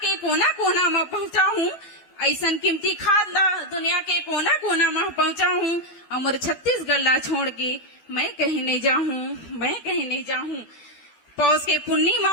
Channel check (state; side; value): late; right; 12 ms